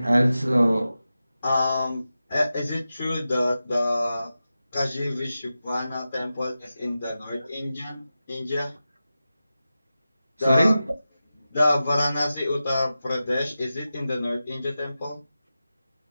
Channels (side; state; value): both; inverted; correlation -0.93